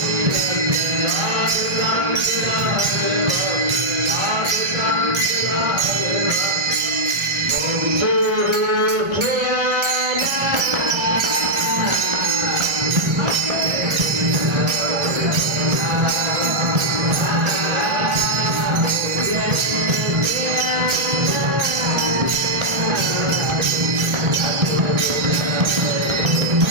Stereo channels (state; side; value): late; left; 1.4 ms